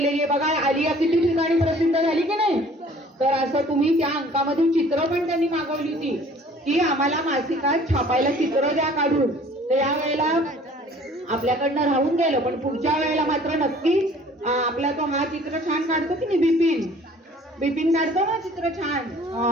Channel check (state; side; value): normal; both; correlation 0.52